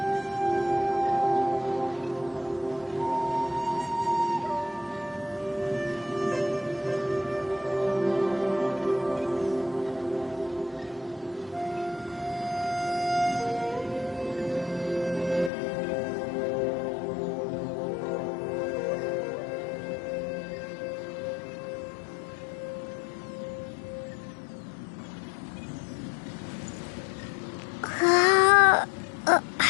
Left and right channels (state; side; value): drops out; right; at 15.5 s